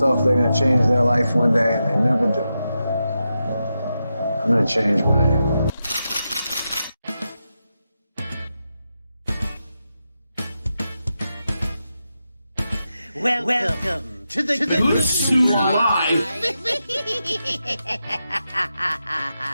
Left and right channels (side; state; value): both; inverted; correlation -0.88